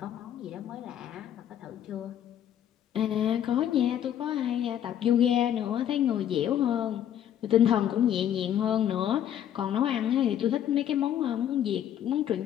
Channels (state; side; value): quieter; right; 10.4 dB